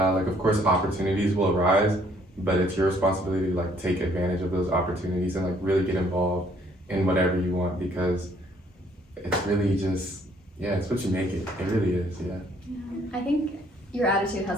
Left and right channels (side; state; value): both; normal; correlation 0.64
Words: of course opportunities will arise, but it's your responsibility to like take advantage of those opportunities and like really get involved in whatever you want, because it's really just, it's what you make it. It really is, I think your attitude